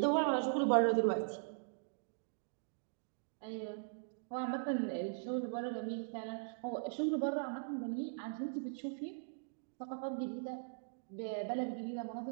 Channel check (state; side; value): silent; left; digital silence